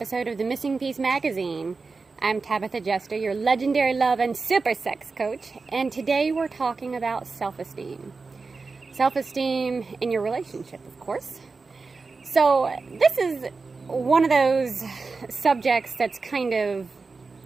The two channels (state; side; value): quieter; left; 4.2 dB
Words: of the Missing Piece magazine. I'm Tabitha Jester, your legendary love and super sex coach, and today we're talking about self-esteem. Self-esteem in your relationship, of course. So this is one of those subjects that's kind